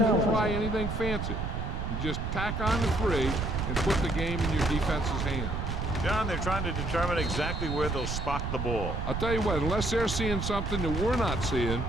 try anything fancy. You just tack on the 3 and put the game in your defense's hands. John, they're trying to determine exactly where they'll spot the ball. I'll tell you what, unless they're seeing something that we're not seeing,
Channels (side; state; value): right; noise; rumble, 3 dB below the sound